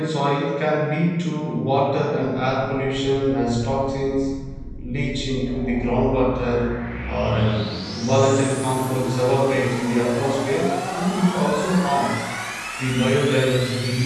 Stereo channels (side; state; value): both; identical; correlation 1.00